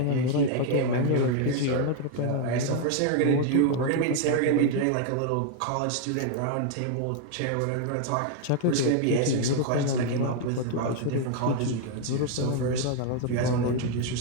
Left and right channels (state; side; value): different; both; correlation 0.01